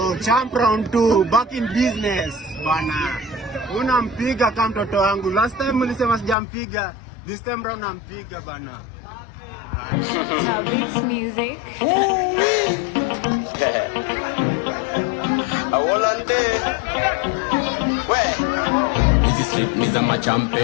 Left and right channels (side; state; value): right; drops out; at 6.4 s